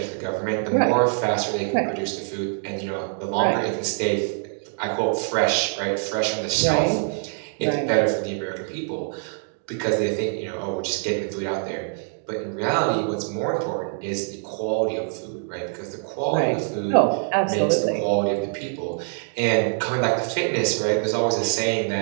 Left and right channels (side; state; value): left; silent; 62 dB below the other